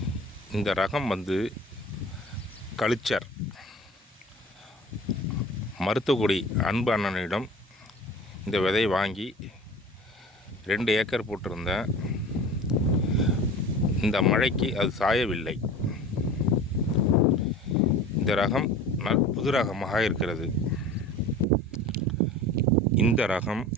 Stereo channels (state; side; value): normal; both; correlation 0.40